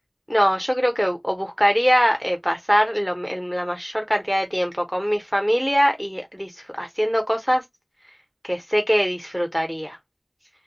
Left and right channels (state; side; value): identical; both; correlation 1.00